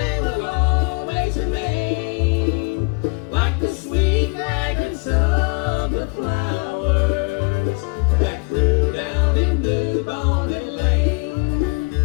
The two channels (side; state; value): right; quieter; 31.4 dB